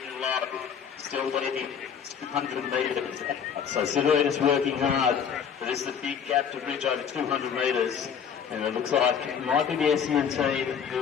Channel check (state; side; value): quieter; right; 7.5 dB